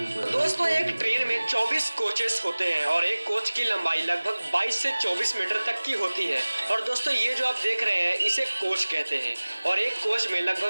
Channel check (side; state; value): both; inverted; correlation -1.00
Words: दोस्तों एक ट्रेन में 24 कोचेस होते हैं और एक कोच की लंबाई लगभग 22 से 24 मीटर तक की होती है। और दोस्तों ये जो आप देख रहे हैं इसे कोच कहते हैं और एक कोच में